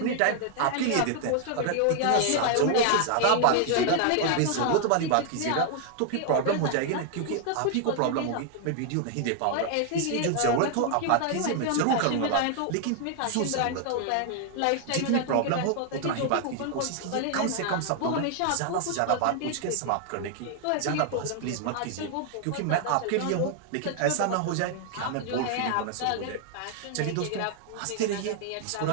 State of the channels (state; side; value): different; both; correlation 0.00